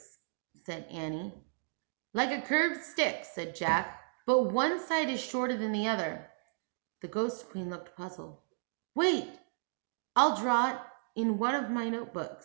said Annie. Like a curved stick, said Jack, but one side is shorter than the other. The Ghost Queen looked puzzled. Wait, I'll draw it in one of my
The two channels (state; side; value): silent; left; digital silence